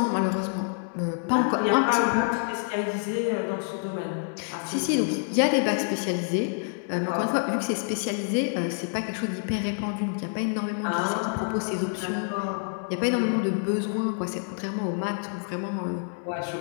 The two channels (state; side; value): silent; right; 60 dB below the other